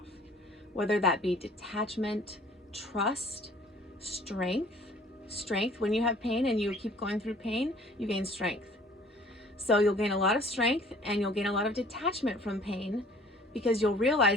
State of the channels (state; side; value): normal; both; correlation 0.53